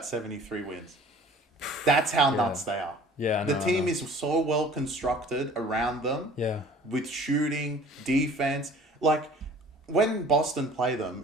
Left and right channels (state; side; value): normal; both; correlation 0.49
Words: 73 wins. That's how nuts they are. Yeah, the team is so well constructed around them. Yeah, with shooting, defense. Like, when Boston play them